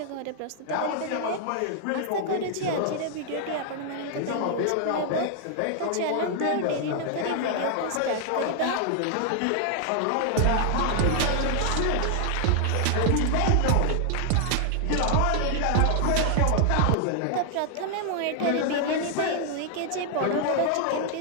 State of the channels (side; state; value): both; different; correlation 0.00